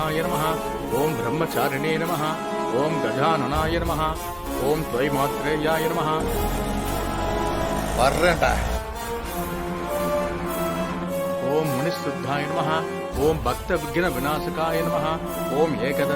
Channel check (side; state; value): both; identical; correlation 1.00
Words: नमः, ओम ब्रह्मचारिणे नमः, ओम गजाननाय नमः, ओम त्वयिमात्रेयाय नमः. வர்றேன்டா. ओम मुनिशुद्धाय नमः, ओम भक्त विघ्न विनाशकाय नमः, ओम